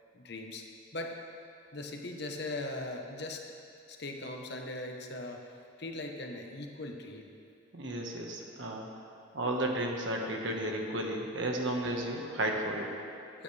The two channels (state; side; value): normal; both; correlation 0.16